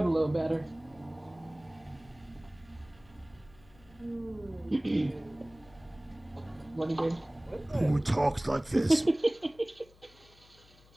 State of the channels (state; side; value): noise; left; hum, 26 dB below the sound